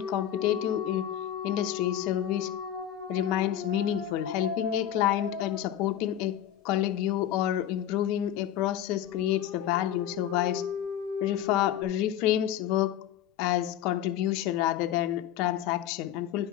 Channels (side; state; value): right; quieter; 11.1 dB